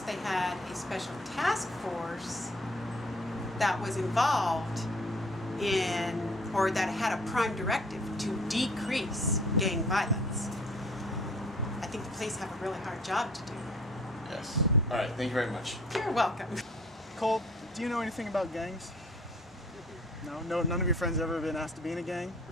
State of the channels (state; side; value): normal; both; correlation 0.53